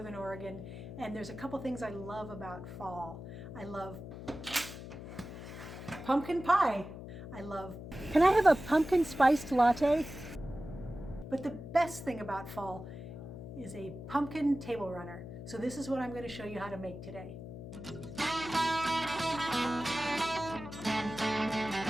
Oregon, and there's a couple things I love about fall. I love pumpkin pie. Can I have a pumpkin spiced latte? But the best thing about fall is a pumpkin table runner. So this is what I'm going to show you how to make today.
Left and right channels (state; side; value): noise; left; hum, 11 dB below the sound